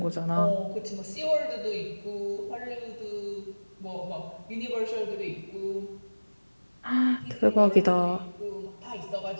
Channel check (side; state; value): both; inverted; correlation -1.00